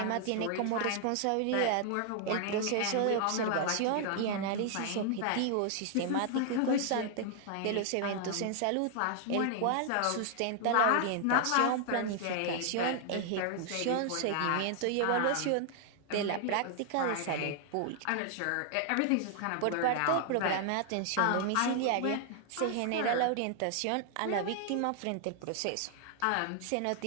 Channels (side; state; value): both; different; correlation 0.00